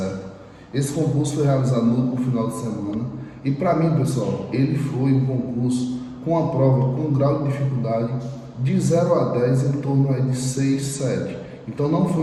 Esse concurso foi realizado no final de semana e para mim, pessoal, ele foi um concurso com a prova com um grau de dificuldade de 0 a 10 em torno aí de 6, 7. Então não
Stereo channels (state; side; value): identical; both; correlation 1.00